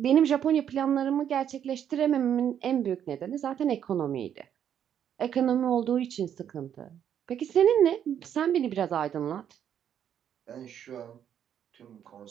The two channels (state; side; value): quieter; left; 9.3 dB